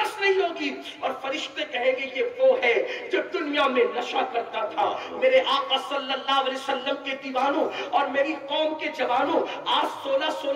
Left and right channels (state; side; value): identical; both; correlation 1.00